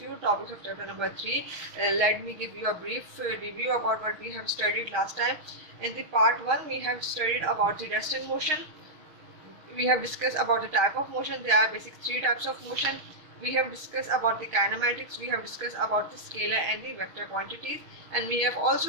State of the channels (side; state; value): left; late; 6.4 ms